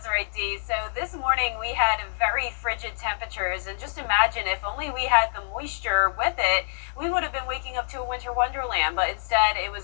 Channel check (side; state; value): right; silent; digital silence